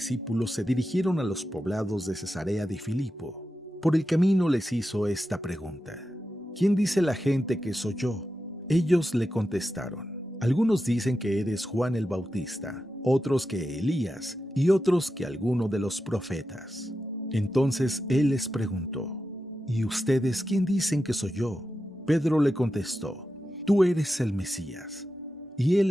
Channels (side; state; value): both; normal; correlation 0.90